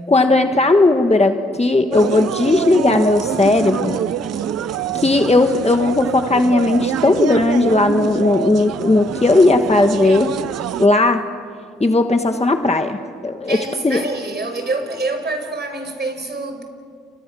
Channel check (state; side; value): normal; both; correlation 0.71